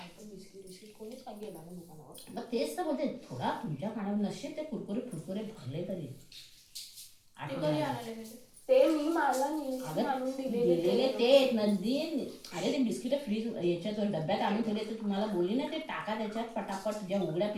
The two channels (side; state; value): both; identical; correlation 1.00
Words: बिस्किट कोणीच काय गेला नाही दुकानावर. मग तेच तर बोलते, थोडा तुमच्या खाण्यावर नसेल ते कुरकुरे फुरकुरे भरले तरी ते कधी आणाले ते मी मला आणून दिलेले ते नंदी. अरे ते बिस्किट फ्रीज याच्यात डब्यात आणून ठेवले तर तुम्हाला बोलली ना ते टाका त्याच्यात पटापट. ज्या उघड्या